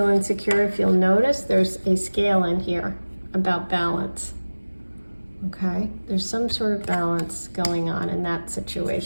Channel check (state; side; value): inverted; both; correlation -1.00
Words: insecure, if you'll notice, there's a scale in here about balance. Okay, there's some sort of balance going on in that